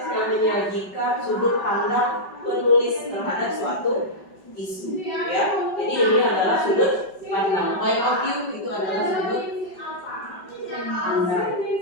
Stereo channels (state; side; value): late; right; 5.2 ms